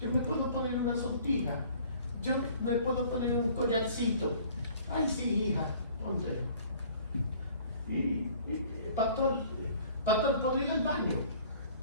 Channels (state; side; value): inverted; both; correlation -0.52